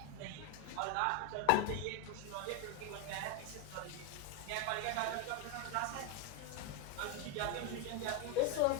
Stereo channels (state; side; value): different; both; correlation 0.02